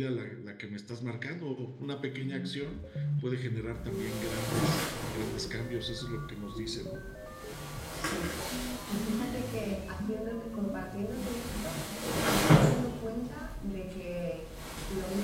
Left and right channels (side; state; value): both; identical; correlation 1.00